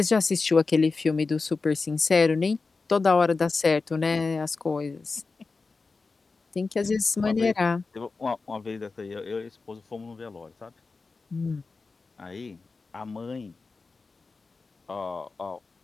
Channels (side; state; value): right; quieter; 4.1 dB